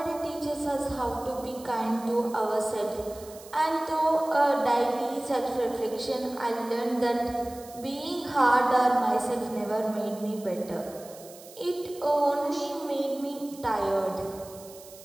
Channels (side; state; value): right; noise; hiss, 19 dB below the sound